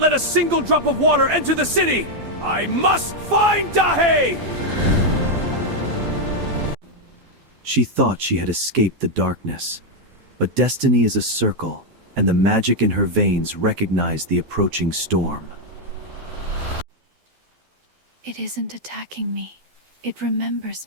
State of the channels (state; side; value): late; left; 12 ms